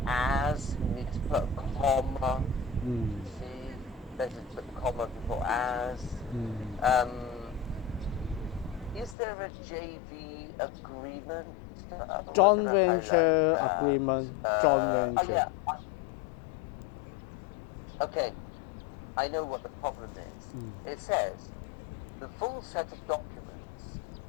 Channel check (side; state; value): right; drops out; at 9.2 s